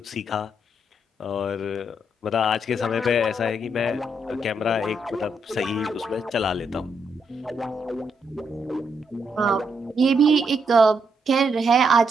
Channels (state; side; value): normal; both; correlation 0.78